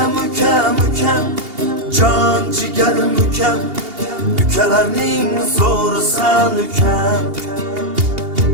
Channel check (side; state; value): left; late; 2.8 ms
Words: ukam, ukam, jon jigarim ukam, ukalarning zo'risan ukam.